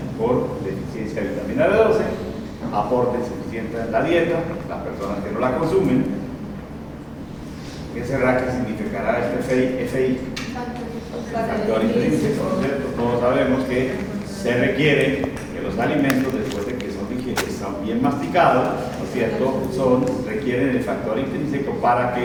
Por deficiencia de vitamina B12, aporte insuficiente en la dieta, las personas que no la consumen. ¿Qué será que significará este FI? Factor intrínseco, ¿cierto? Todos sabemos que se requiere que los alimentos, después de que están bien masticados, ¿no es cierto?, requieren el factor intrínseco para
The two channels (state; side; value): identical; both; correlation 1.00